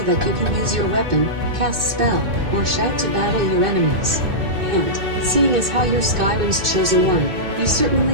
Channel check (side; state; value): left; late; 2.6 ms